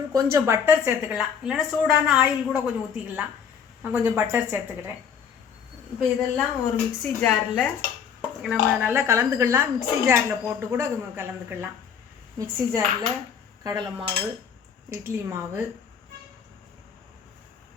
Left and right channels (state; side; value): quieter; right; 7.3 dB